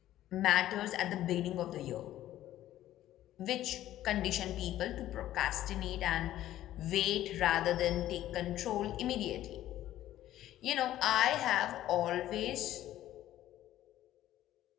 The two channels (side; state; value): right; quieter; 13.5 dB